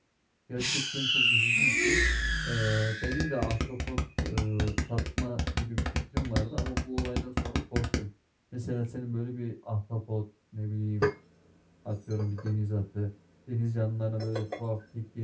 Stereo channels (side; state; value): both; identical; correlation 1.00